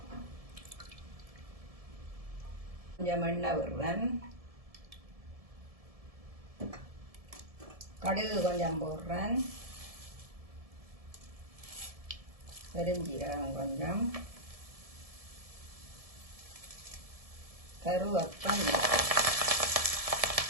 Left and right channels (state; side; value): late; left; 1.7 ms